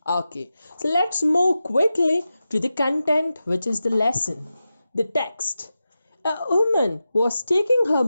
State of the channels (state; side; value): inverted; both; correlation -0.92